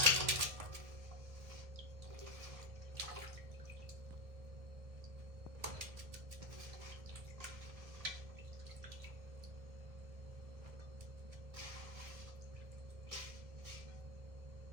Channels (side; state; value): left; late; 1.7 ms